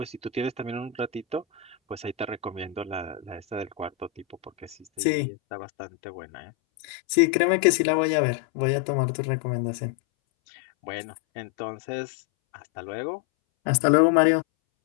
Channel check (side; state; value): right; drops out; at 4.9 s